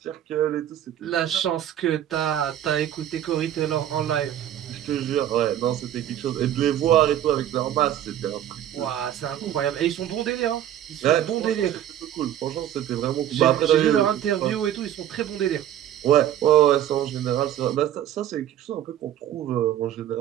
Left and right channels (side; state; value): left; quieter; 11.3 dB